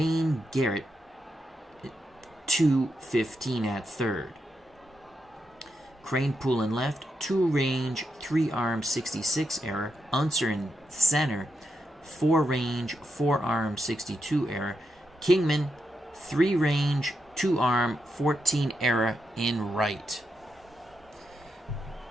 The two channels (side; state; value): both; normal; correlation 0.85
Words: Garrett, 215 at third. Kranepool in left, 2 range, 3 arm, 66 error. Unser in center, 4 range, 4 arm, 62 error. Kingman, 3 range, 2 arm, 14 error in right.